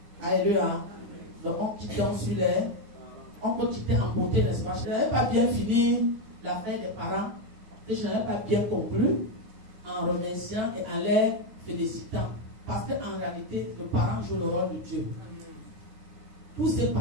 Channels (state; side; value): late; left; 9.2 ms